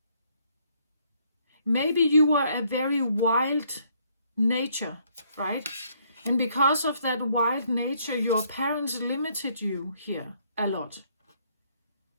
Maybe you were a very wild nature, right? And because of that wild nature, your parents limited you here a lot.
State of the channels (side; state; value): both; inverted; correlation -0.68